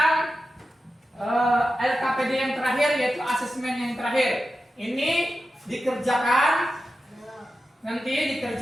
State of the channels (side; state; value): both; normal; correlation 0.92